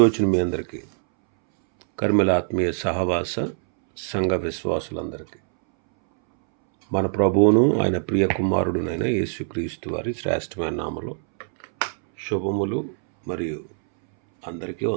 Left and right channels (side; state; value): left; silent; 63 dB below the other